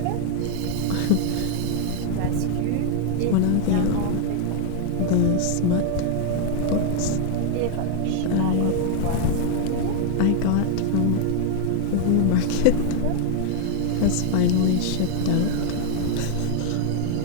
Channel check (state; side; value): different; both; correlation 0.00